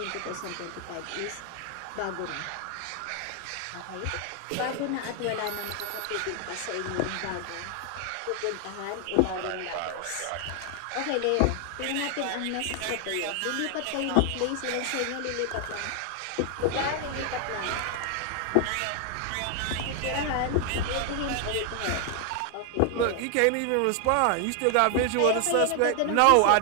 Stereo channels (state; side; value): different; both; correlation 0.00